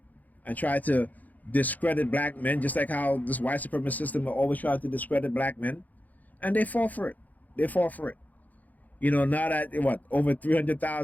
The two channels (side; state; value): right; late; 0.080 ms